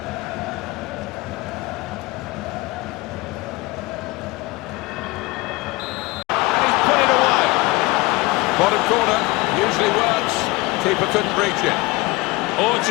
And he's put it away. Bottom corner, usually works. Keeper couldn't reach it. Oh, it's a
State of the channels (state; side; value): quieter; right; 22.5 dB